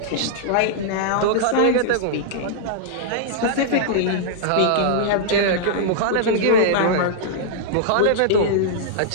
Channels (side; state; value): both; different; correlation -0.02